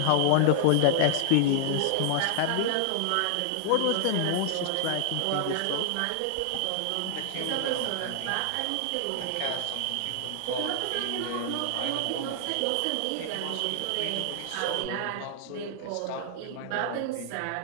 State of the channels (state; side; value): different; both; correlation -0.01